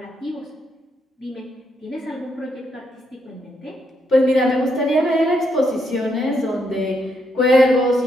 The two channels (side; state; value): both; normal; correlation 0.77